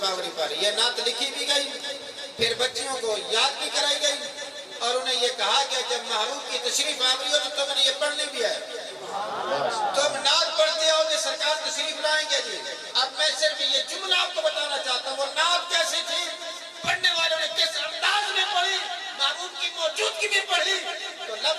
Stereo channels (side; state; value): both; identical; correlation 1.00